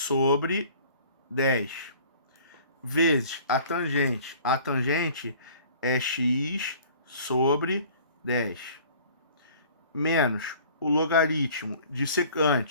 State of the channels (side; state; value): both; inverted; correlation -0.50